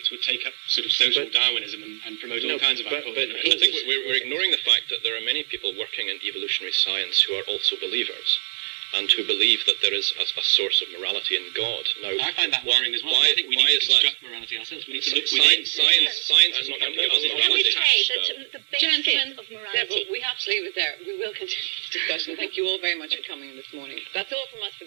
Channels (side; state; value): left; silent; 62 dB below the other